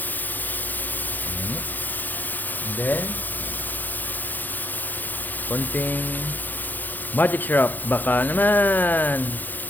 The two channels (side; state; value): right; late; 0.086 ms